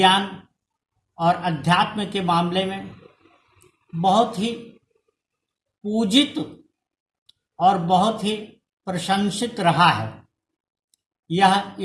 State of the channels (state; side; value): identical; both; correlation 1.00